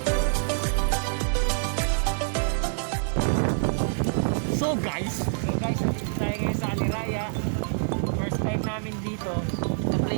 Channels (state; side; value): silent; left; digital silence